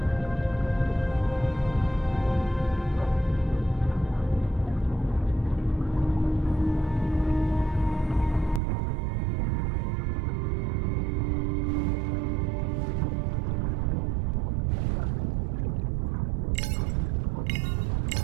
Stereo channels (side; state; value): left; drops out; at 8.6 s